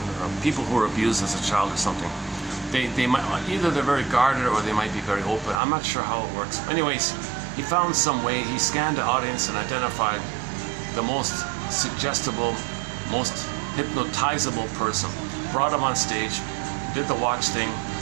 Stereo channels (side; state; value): left; drops out; at 5.6 s